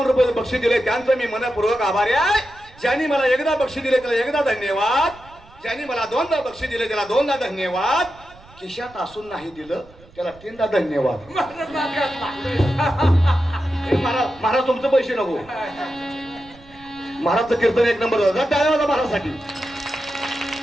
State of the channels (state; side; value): noise; right; rumble, 24 dB below the sound